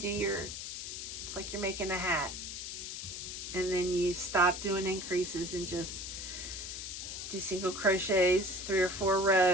your, it's like you're making a hat. And then you stop doing increases and just do single crochets, 3 or 4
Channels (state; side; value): noise; left; hiss, 7 dB below the sound